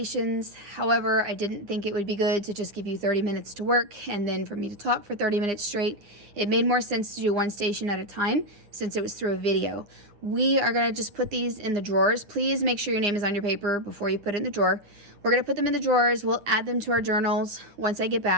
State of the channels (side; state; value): left; late; 9.8 ms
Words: However, I didn't think it would be good to just give you 30 minutes to work and then for me to talk for 30 minutes straight. It made more sense to do one station at a time since it was through a video. We are gonna just put these in the drawers. Please make sure your name is on your paper before you put it in the drawer. We're gonna put them in the drawers. We'll add them to our journals once I get